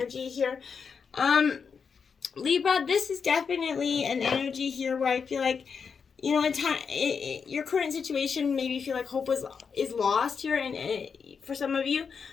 here. Libra, this is definitely an energy here where I feel like, your current situation, maybe you feel like hope is lost here, and for some of you.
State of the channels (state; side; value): quieter; right; 6.0 dB